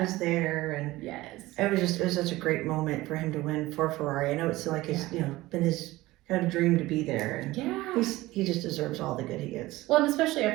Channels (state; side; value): quieter; left; 18.4 dB